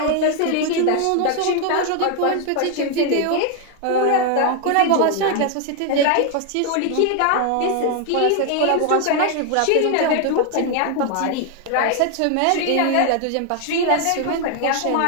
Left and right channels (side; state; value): both; different; correlation 0.00